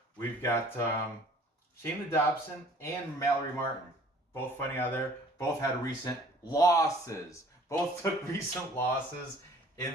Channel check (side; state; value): both; normal; correlation 0.53